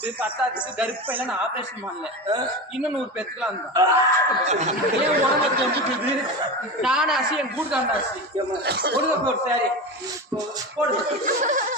பத்தாத்துக்கு கருப்பையில நான் ஆபரேஷன் பண்ணல. இன்னும் 100 பெற்றுக்கலாம். ஏன் உடம்பு தெரிஞ்சுக்குது? நானே ஆசி என் கூட்டு தான் ஆசி. கொடுங்க போடு சாரி போடு. போடு.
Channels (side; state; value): both; normal; correlation 0.24